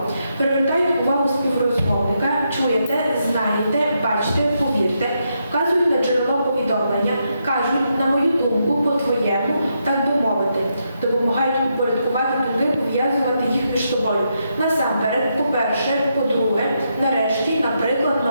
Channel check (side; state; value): both; inverted; correlation -0.81